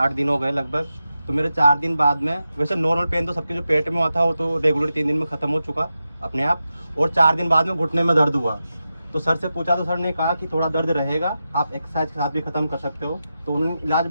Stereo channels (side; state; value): both; inverted; correlation -0.91